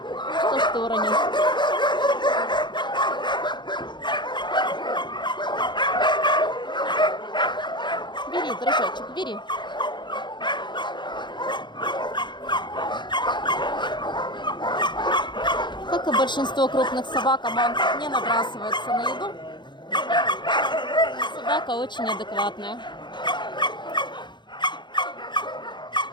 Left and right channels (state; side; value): late; right; 0.22 ms